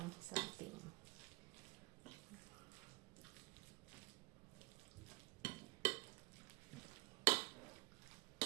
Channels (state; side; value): quieter; left; 22.1 dB